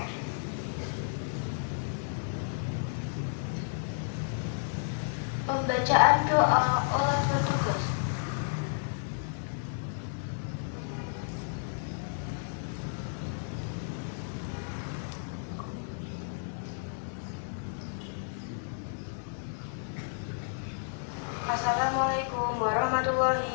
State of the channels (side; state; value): right; silent; 56 dB below the other